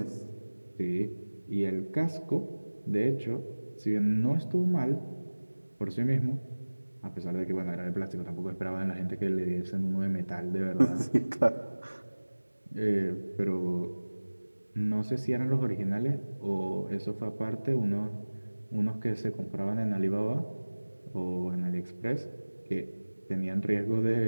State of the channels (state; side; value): inverted; both; correlation -1.00